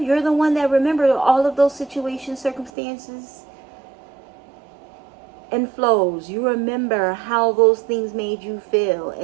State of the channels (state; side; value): drops out; left; at 2.7 s